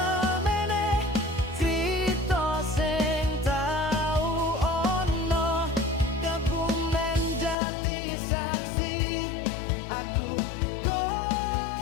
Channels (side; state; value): right; drops out; at 7.6 s